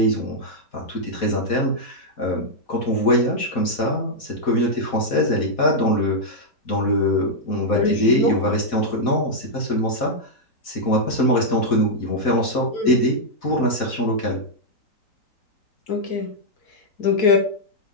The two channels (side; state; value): right; late; 4.1 ms